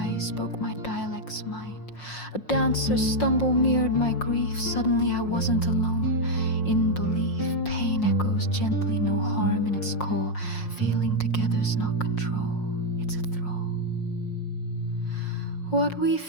spoke my dialect's mind. A dancer's stumble mirrored my grief. Suddenly I wasn't alone. In belief, pain echoes gently, no harm in its core. Feeling together's not control, it's a thrall. What we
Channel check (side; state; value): right; late; 5.6 ms